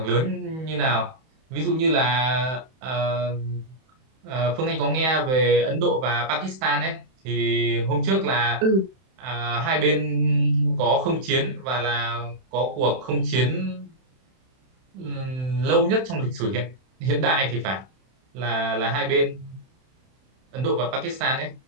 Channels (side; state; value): left; late; 31 ms